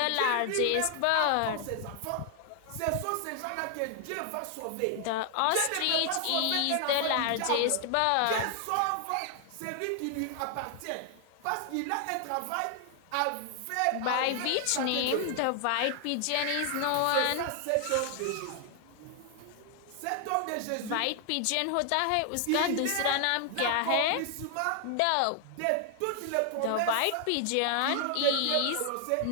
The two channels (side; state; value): both; different; correlation 0.00